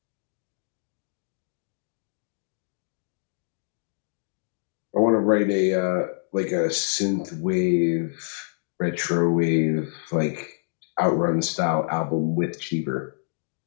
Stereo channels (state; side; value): silent; right; digital silence